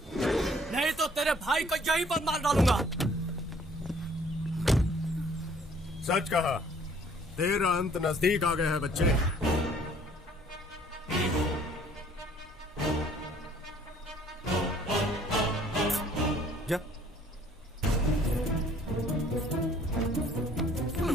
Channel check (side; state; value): both; normal; correlation 0.58